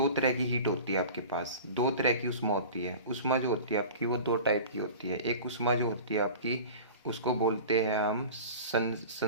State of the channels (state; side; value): inverted; both; correlation -0.37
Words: तरह की हीट होती है आपके पास, दो तरह की उष्मा होती है। उष्मा जो होती है आपकी वो दो टाइप की होती है। एक उष्मा जो होती है आपकी उसको बोलते हैं हम